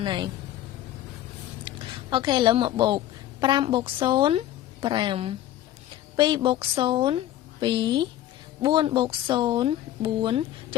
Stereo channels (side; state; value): right; quieter; 13.1 dB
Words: ហើយអូខេឥឡូវមកបូក 5 បូក 0 5 2 បូក 0 2 4 បូក 0 4 ច